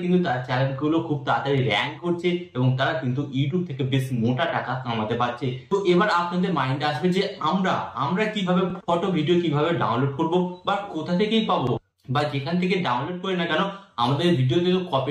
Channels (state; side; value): identical; both; correlation 1.00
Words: কিন্তু তার চ্যানেল গুলো খুব তাড়াতাড়ি র্যাঙ্ক করছে এবং তারা কিন্তু ইউটিউব থেকে বেশ মোটা টাকা কামাতে পারছে। তো এবার আপনাদের মাইন্ডে আসবে যে আমরা কিভাবে ফটো ভিডিও কিভাবে ডাউনলোড করব বা কোথা থেকেই পাবো, বা যেখান থেকে ডাউনলোড করি না কেন আমাদের ভিডিওতে তো